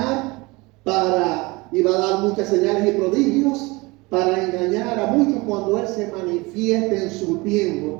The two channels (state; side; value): quieter; left; 24.0 dB